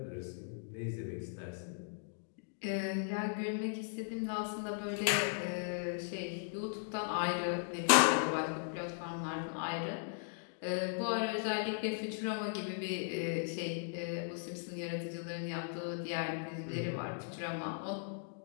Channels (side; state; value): right; silent; digital silence